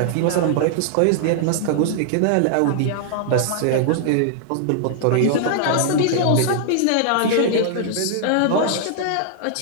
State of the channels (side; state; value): both; different; correlation -0.01